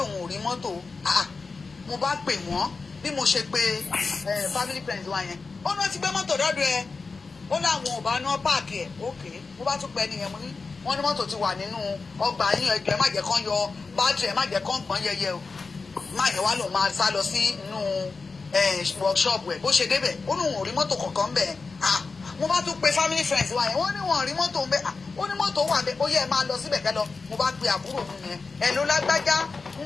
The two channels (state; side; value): quieter; right; 4.3 dB